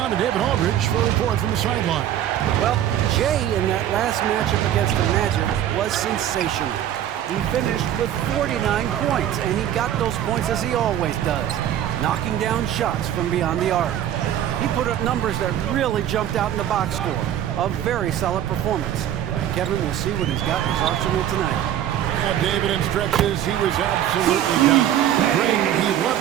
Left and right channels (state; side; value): quieter; left; 11.2 dB